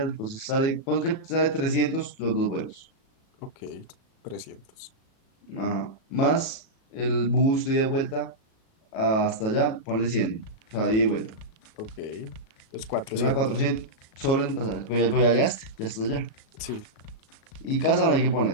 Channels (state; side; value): late; right; 37 ms